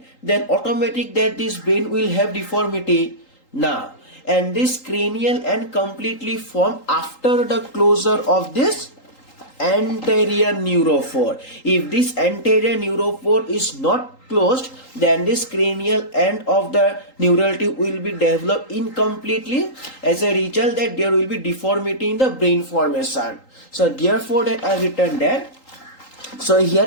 then automatic that this brain will have deformity. Now and this cranial end completely form after the closure of this anterior neurophore. If this anterior neurophore is not closed, then this cranial end of the neural tube will be developed incompletely. As a result that there will be deformity in the brain formation. So therefore that I written that. So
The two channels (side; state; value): right; late; 3.8 ms